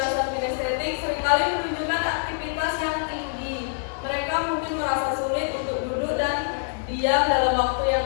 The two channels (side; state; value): right; silent; digital silence